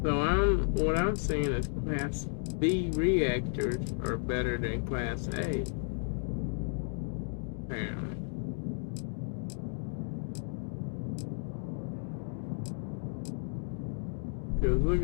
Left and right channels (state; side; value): silent; right; 56 dB below the other